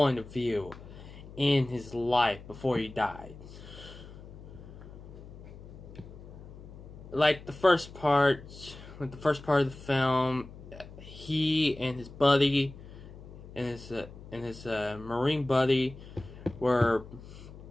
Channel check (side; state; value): left; noise; hum, 16 dB below the sound